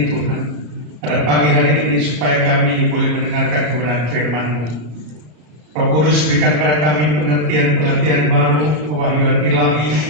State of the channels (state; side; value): late; left; 33 ms